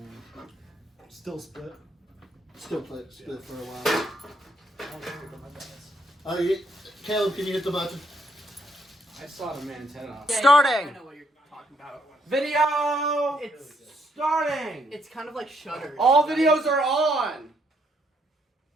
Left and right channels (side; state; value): both; normal; correlation 0.73